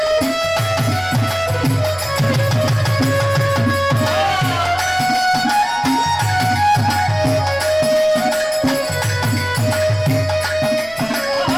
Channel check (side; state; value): right; noise; rumble, 23 dB below the sound